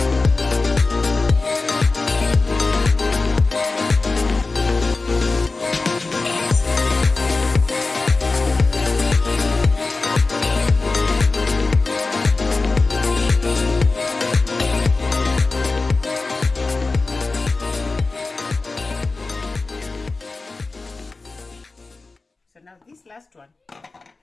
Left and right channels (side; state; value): right; quieter; 3.7 dB